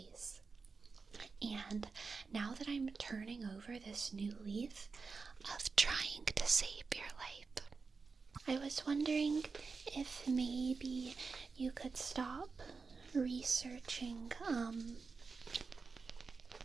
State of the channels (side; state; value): left; quieter; 4.6 dB